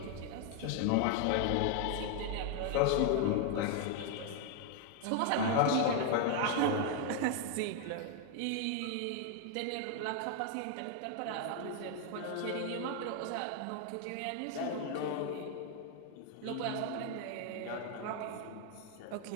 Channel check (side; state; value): both; different; correlation 0.00